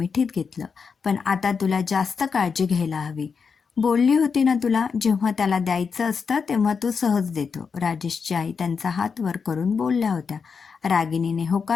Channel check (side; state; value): right; quieter; 5.7 dB